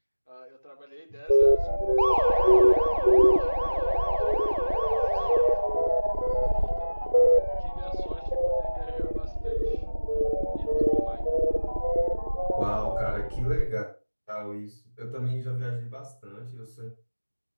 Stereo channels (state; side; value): inverted; both; correlation -1.00